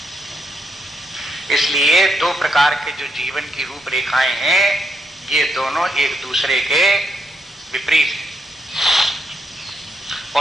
इसलिए दो प्रकार के जो जीवन की रूपरेखाएं हैं, ये दोनों एक दूसरे के विपरीत हैं।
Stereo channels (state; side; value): normal; both; correlation 0.79